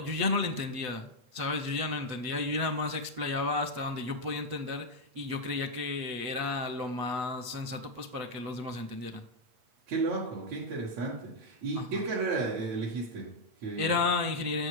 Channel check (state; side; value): late; left; 8.0 ms